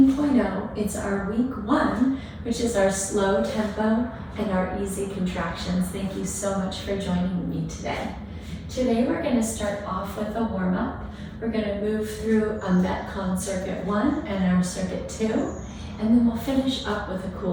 It's our week 1, which is our slow tempo and our easy contractions. Thank you so much for joining me today. Today we're going to start off with a warm-up. We're going to move through a MetCon Circuit 1 and our Circuit 2, and then we'll finish up with a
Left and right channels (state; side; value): identical; both; correlation 1.00